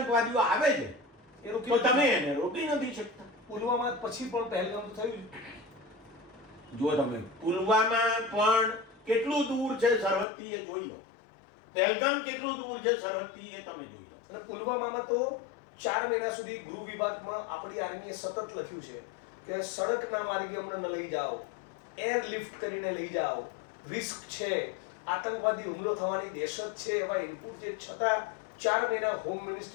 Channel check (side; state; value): right; drops out; at 10.2 s